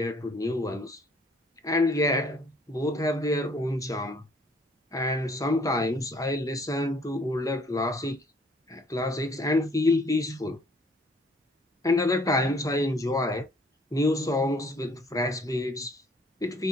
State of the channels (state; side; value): normal; both; correlation 0.59